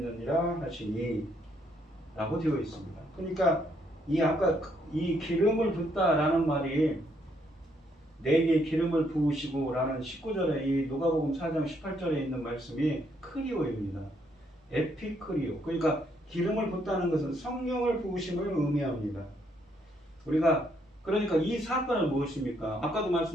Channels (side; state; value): both; normal; correlation 0.72